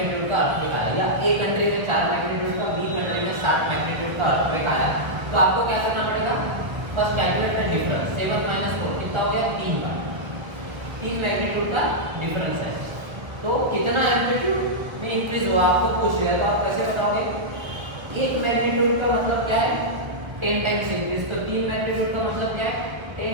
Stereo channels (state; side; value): late; left; 1.0 ms